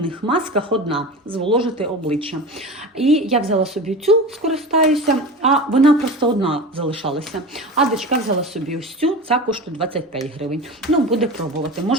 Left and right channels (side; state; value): both; normal; correlation 0.30